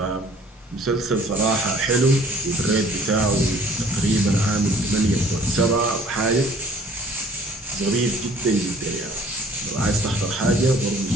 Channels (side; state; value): both; normal; correlation 0.54